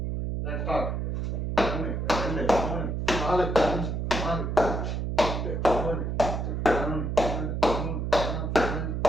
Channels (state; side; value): noise; right; hum, 1 dB below the sound